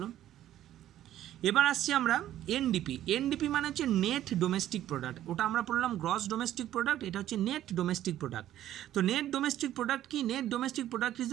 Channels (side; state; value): left; quieter; 12.6 dB